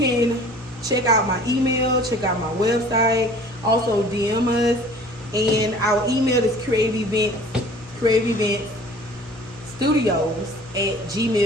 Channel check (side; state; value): both; normal; correlation 0.48